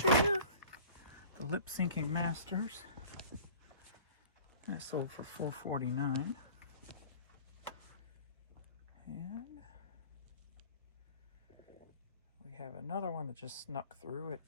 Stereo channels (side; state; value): both; inverted; correlation -0.45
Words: true. The Lip Syncing Masters. That sold for $4.49. And we have another one that just snuck through at